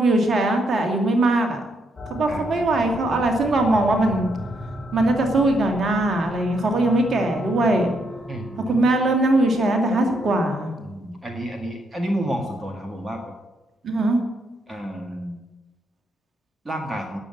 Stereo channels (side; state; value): both; normal; correlation 0.76